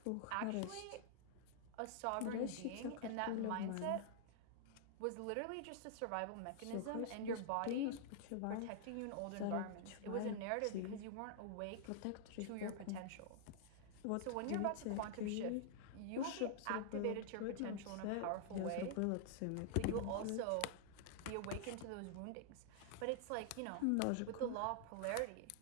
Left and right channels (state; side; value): different; both; correlation -0.01